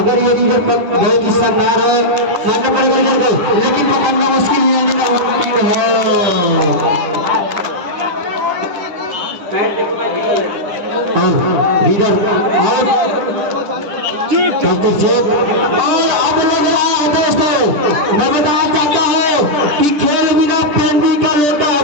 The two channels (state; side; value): late; left; 10 ms